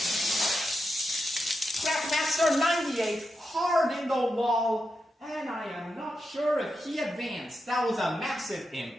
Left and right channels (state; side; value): normal; both; correlation 0.87